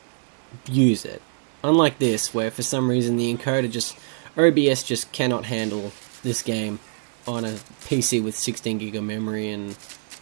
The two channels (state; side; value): silent; left; digital silence